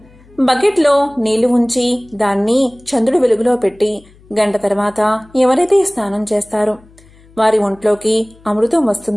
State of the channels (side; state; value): left; noise; hum, 27 dB below the sound